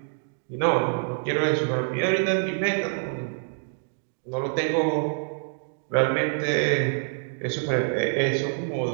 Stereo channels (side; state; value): left; silent; digital silence